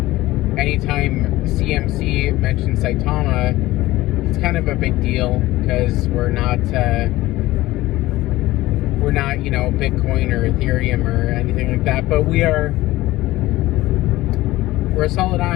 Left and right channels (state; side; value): quieter; right; 17.5 dB